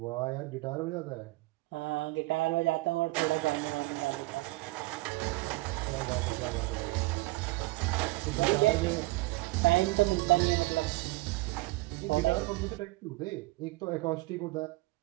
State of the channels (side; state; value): left; quieter; 21.3 dB